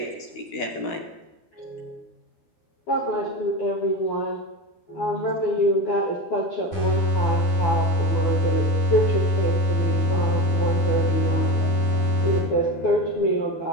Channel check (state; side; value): late; right; 12 ms